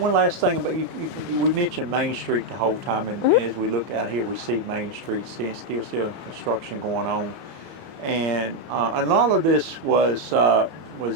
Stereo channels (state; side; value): late; left; 31 ms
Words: last thing about you, we mentioned Main Street the whole time, and as we look out here, we see Main Street still construction going on, and a lot of this was